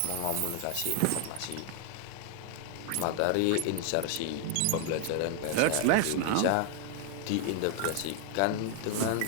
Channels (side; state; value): both; different; correlation 0.00